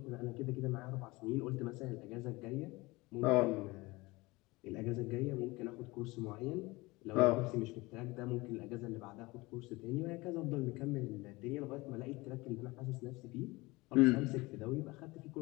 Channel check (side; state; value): right; quieter; 22.4 dB